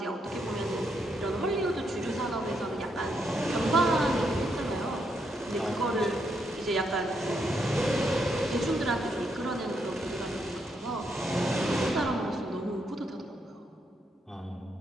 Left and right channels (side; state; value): both; normal; correlation 0.78